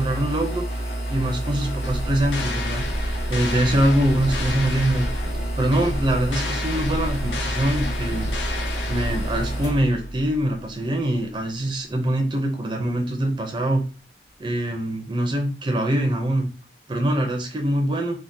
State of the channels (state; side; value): normal; both; correlation 0.82